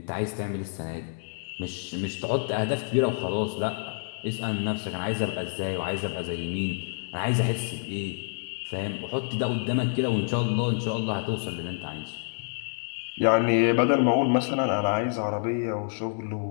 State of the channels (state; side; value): silent; right; 59 dB below the other